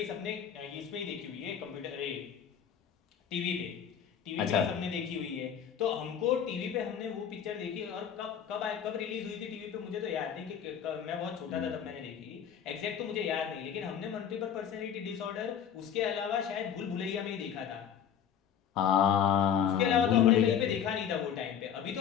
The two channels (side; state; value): right; quieter; 8.5 dB